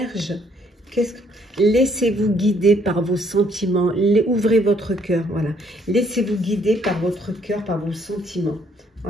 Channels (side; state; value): both; normal; correlation 0.66